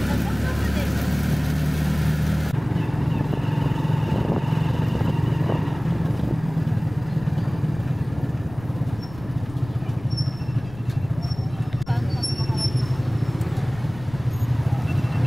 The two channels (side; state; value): left; noise; rumble, 16 dB below the sound